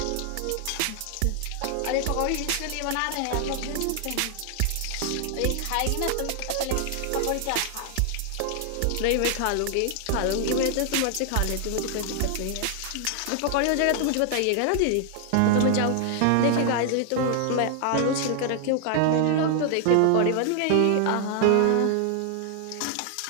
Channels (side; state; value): both; different; correlation 0.00